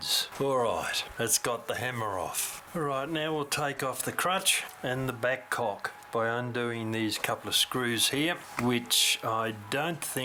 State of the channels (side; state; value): both; identical; correlation 1.00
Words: Alright, that's got the hammer off. Alright, now we'll take off the crutch and the back cock by undoing these couple of screws here, which I don't